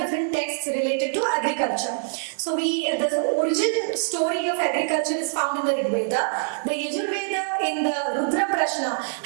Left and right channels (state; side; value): silent; left; digital silence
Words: different texts related to agriculture. So the origin story of agriculture is found in the Rig Veda. The Yajur Veda in the Rudra Prashna